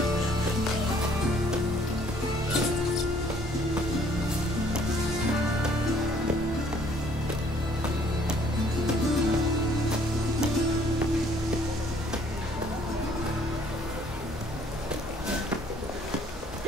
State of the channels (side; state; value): both; normal; correlation 0.60